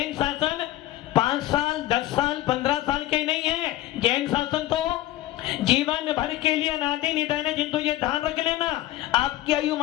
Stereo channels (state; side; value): quieter; right; 15.2 dB